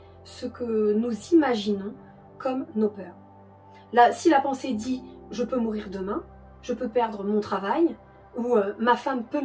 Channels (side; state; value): both; identical; correlation 1.00